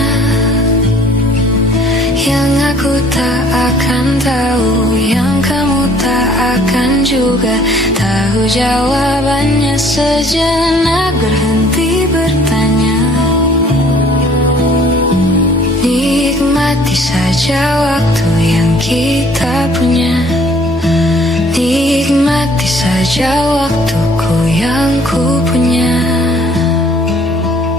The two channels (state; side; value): normal; both; correlation 0.57